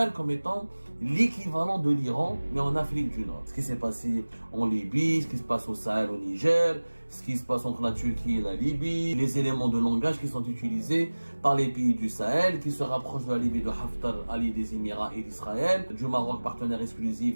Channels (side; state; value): both; inverted; correlation -1.00